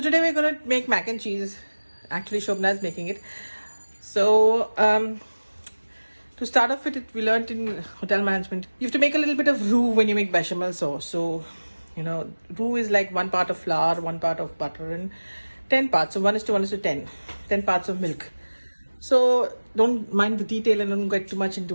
today we're gonna make mac and cheese. Actually, Shobna is making it. So to start off with it, we learned in hotel management, you have to make a little bit of roux when you make bechamel sauce. So roux is like 1 part of flour, 1 part of butter, and 10 parts. So 1:1:10, 10 parts of milk. So don't mind the detail and don't get too much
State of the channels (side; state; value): both; inverted; correlation -1.00